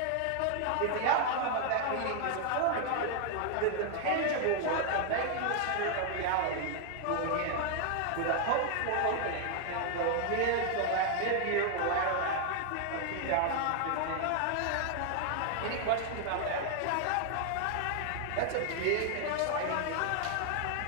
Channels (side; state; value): both; different; correlation 0.00